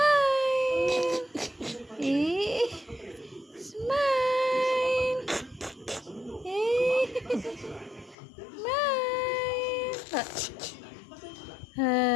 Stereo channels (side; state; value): right; drops out; at 8.2 s